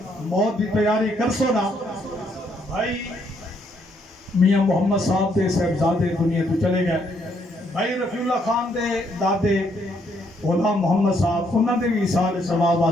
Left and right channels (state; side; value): normal; both; correlation 0.72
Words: موت دی تیاری کر سونا بھائی میاں محمد صاحب دے صاحبزادے دنیا تو چلے گئے بھائی رفیع اللہ خان دے دادے غلام محمد صاحب انہوں نے بھی اصال ثواب